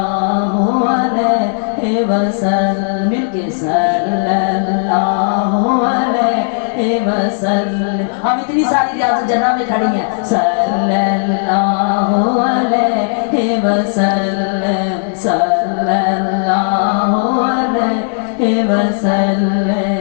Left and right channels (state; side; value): silent; right; digital silence